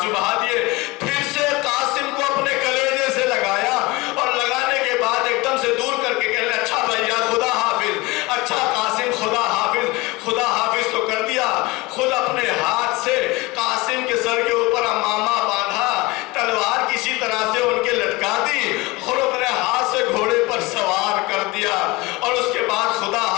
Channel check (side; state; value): right; quieter; 22.3 dB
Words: بہا دیے، پھر سے قاسم کو اپنے کلیجے سے لگایا، اور لگانے کے بعد ایک دم سے دور کر کے کہنے، اچھا بھیا خدا حافظ، اچھا قاسم خدا حافظ. خدا حافظ تو کر دیا، خود اپنے ہاتھ سے قاسم کے سر کے اوپر امامہ باندھا، تلوار کسی طرح سے ان کے لٹکا دی، اور اپنے ہاتھ سے گھوڑے پر سوار کر دیا، اور اس کے بعد خدا